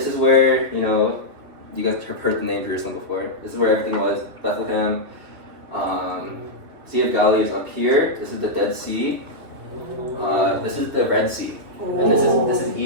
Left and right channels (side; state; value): left; late; 2.7 ms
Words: is where, you guys have heard the name Jerusalem before. This is where everything was. Bethlehem. Sea of Galilee is up here. This is the Dead Sea. This is the Red Sea. And this is